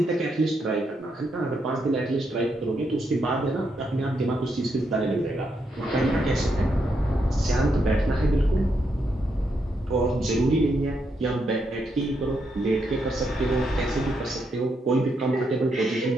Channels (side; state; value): both; normal; correlation 0.80